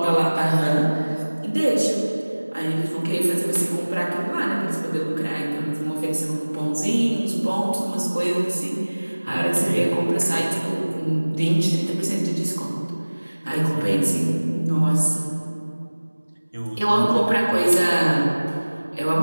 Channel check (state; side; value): inverted; both; correlation -1.00